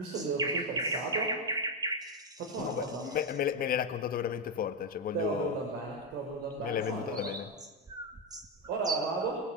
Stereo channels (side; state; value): both; normal; correlation 0.06